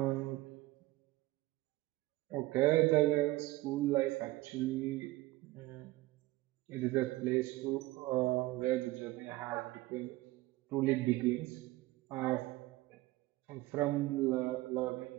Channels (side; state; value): left; quieter; 18.6 dB